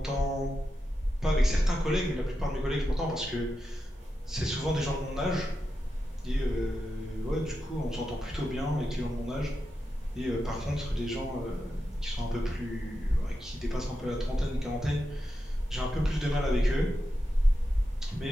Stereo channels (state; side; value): normal; both; correlation 0.89